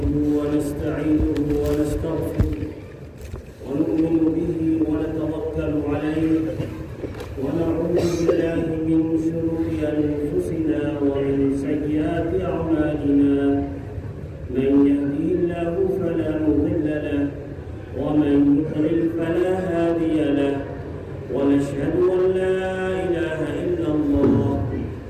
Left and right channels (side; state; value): both; identical; correlation 1.00